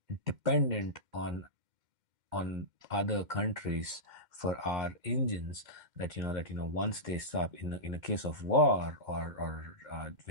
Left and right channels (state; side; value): late; left; 2.1 ms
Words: dependent on other countries for our engines, that once they stop, in a case of war, or